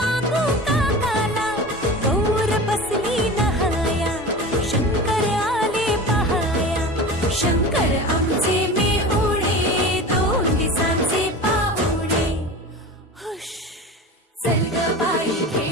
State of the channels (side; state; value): both; normal; correlation 0.32